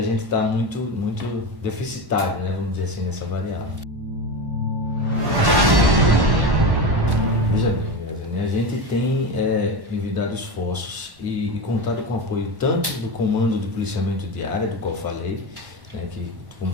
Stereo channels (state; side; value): late; left; 1.1 ms